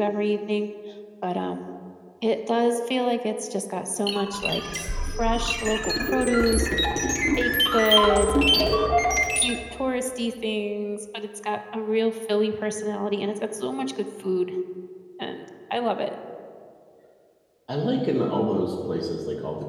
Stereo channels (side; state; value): both; identical; correlation 1.00